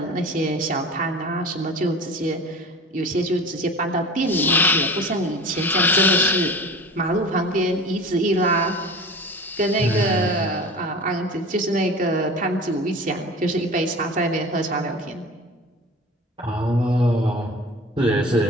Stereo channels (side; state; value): both; normal; correlation 0.36